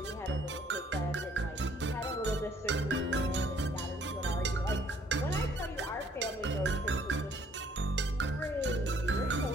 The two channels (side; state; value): both; normal; correlation 0.62